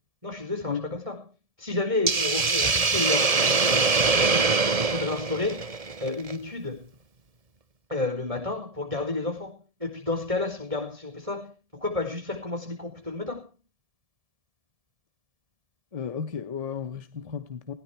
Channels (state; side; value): late; left; 1.7 ms